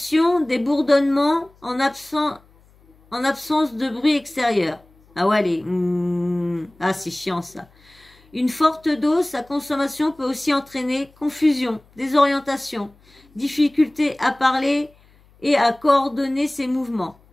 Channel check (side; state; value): left; noise; hum, 30 dB below the sound